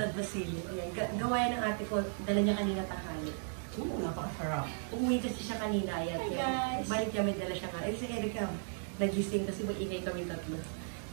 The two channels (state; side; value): silent; left; digital silence